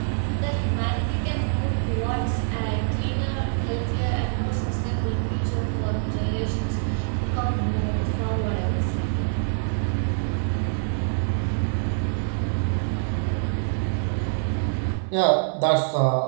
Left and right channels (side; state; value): left; silent; 62 dB below the other